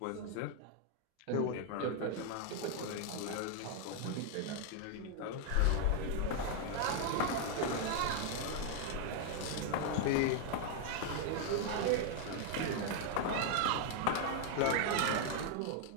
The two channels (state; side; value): different; both; correlation 0.00